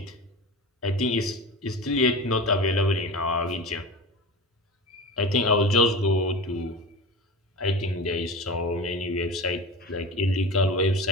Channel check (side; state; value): both; normal; correlation 0.30